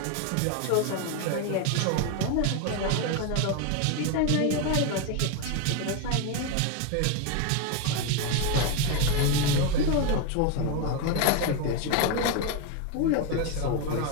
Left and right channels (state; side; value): different; both; correlation 0.02